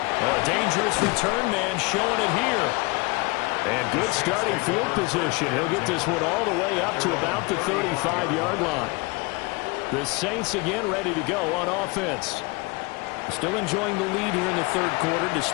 A dangerous return man showing it here. And good starting field position. He'll get this one all the way up to about the 35-yard line. The Saints again ready to go on offense. Still enjoying the lead here in the third quarter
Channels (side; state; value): right; quieter; 26.4 dB